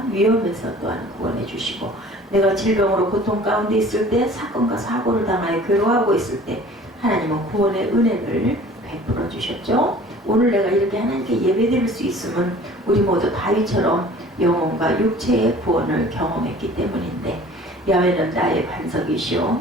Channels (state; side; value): normal; both; correlation 0.47